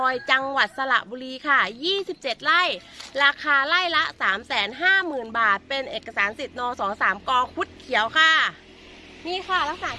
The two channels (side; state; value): both; identical; correlation 1.00